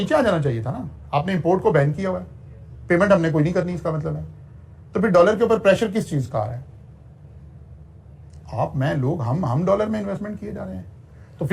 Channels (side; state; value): both; identical; correlation 1.00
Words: आ जाना चाहिए था ना, आपने इंपोर्ट को बैन किया हुआ है, पेमेंट हमने कोई नहीं करनी, इसका मतलब है। तो फिर डॉलर के ऊपर प्रेशर किस चीज का आ रहा है? आप, मैं, लोग, हम डॉलर में इन्वेस्टमेंट किए जा रहे हैं। तो